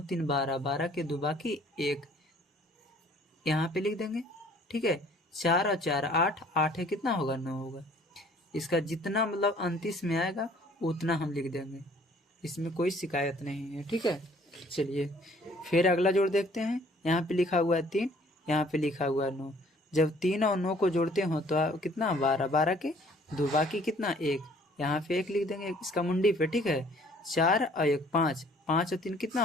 3 12, 12 के 2, बाकी 1, यहाँ पे लिख देंगे। ठीक है, 4 और 4 8, 8 है कितना होगा? 9 होगा। इसका जितना मतलब 29 में आएगा उतना हम लिख देंगे, इसमें कोई शिकायत नहीं है। ठीक है, चलिए फिर अगला जोड़ देखते हैं। यहाँ पे लिखा हुआ है 3, यहाँ पे लिखा हुआ है 9। जब 3 और 9 को जोड़ते हो तो कितना? 12, 12 के 2, बाकी कितना? 1, यहाँ पे 1 लिख देंगे इसका मुंडी पे। ठीक है, 4 और 1 5, 5 और 3 कितना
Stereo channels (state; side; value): normal; both; correlation 0.57